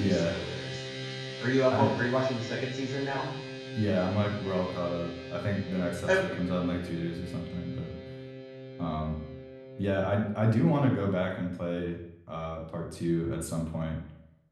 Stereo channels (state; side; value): identical; both; correlation 1.00